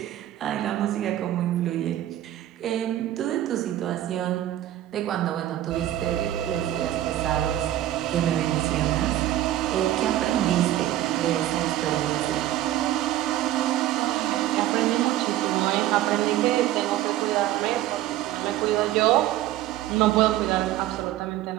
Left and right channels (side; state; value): left; quieter; 13.6 dB